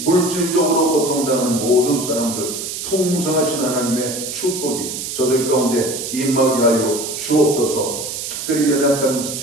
고통당하는 모든 사람들 풍성하신 하나님의 축복이 저들 가운데 임하게 하여 주옵소서. 특별히 연약한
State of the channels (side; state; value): right; noise; hiss, 6 dB below the sound